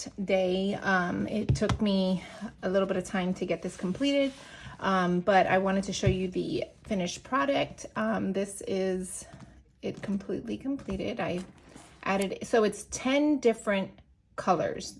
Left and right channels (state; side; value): identical; both; correlation 1.00